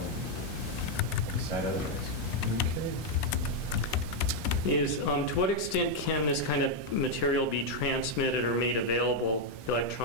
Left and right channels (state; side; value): normal; both; correlation 0.01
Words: decide otherwise. Okay. To what extent can this kind of material be transmitted or made available